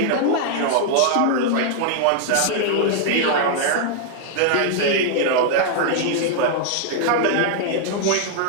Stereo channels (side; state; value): both; different; correlation -0.01